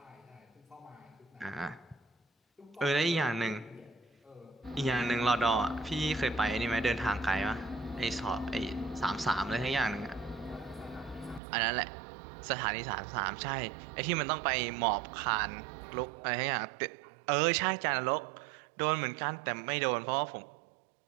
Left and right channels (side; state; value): left; drops out; at 11.4 s